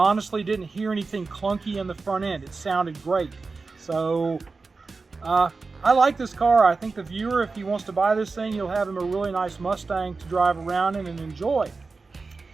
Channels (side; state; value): left; quieter; 4.1 dB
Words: didn't hear anything clunky in the front end. It sounded great. So I like this car. I think the viewer, if he wants to buy this thing, you'll have him a really nice Mustang to drive around in and enjoy.